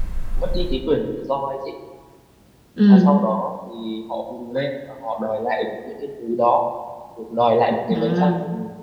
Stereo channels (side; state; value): both; identical; correlation 1.00